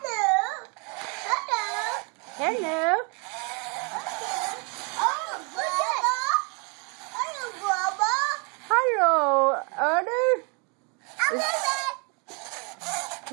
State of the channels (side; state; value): left; quieter; 34.0 dB